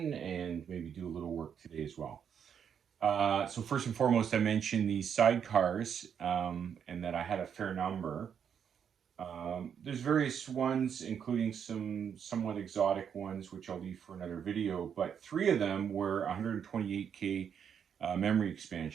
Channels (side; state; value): left; quieter; 7.9 dB